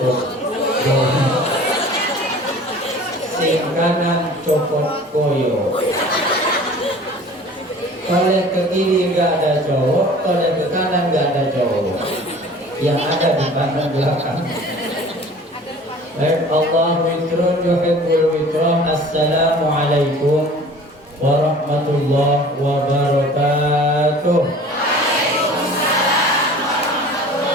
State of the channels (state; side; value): normal; both; correlation 0.45